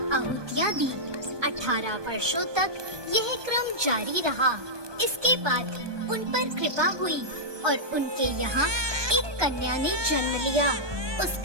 आहुतियाँ दी। 18 वर्षों तक यह क्रम जारी रहा। इसके बाद उन पर कृपा हुई और उनके यहाँ एक कन्या ने जन्म लिया। उस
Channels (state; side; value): late; left; 1.2 ms